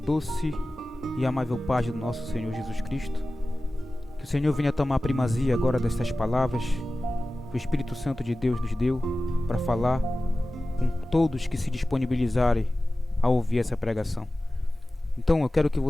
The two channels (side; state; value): both; normal; correlation 0.96